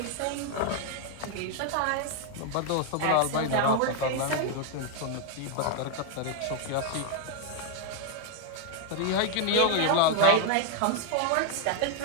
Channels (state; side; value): different; both; correlation 0.00